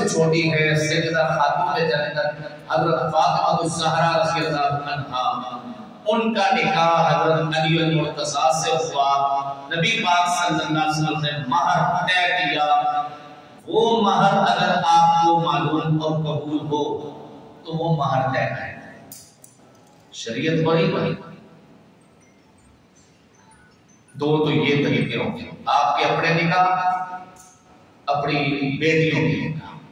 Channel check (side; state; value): both; identical; correlation 1.00